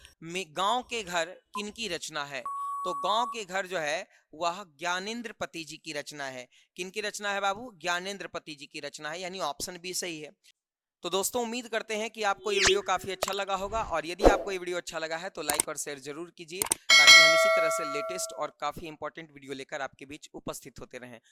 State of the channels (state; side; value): identical; both; correlation 1.00